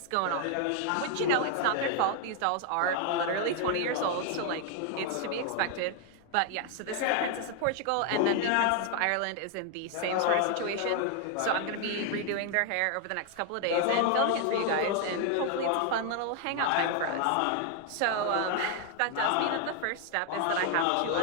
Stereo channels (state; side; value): different; both; correlation 0.00